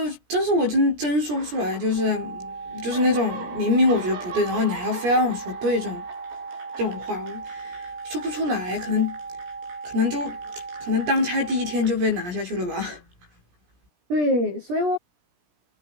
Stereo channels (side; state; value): left; late; 17 ms